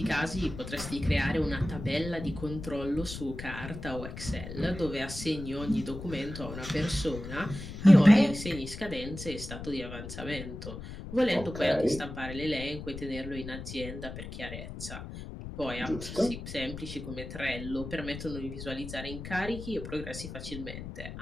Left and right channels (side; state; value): left; noise; rumble, 9 dB below the sound